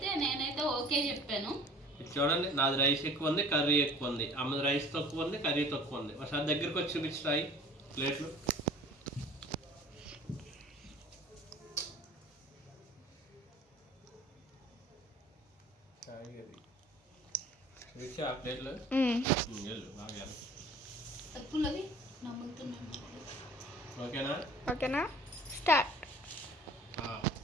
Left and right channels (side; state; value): both; normal; correlation 0.47